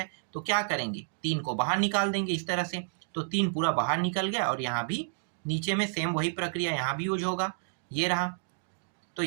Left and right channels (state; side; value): silent; left; digital silence